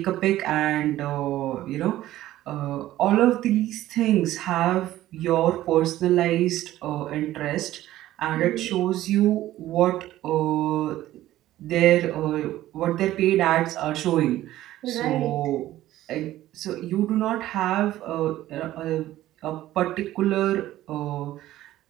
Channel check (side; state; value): left; quieter; 14.5 dB